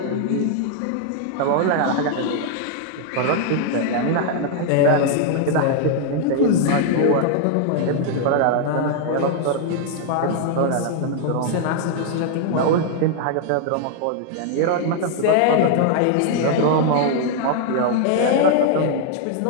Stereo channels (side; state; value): both; different; correlation 0.00